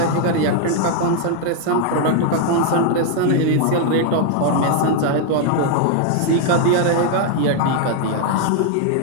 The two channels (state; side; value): different; both; correlation 0.00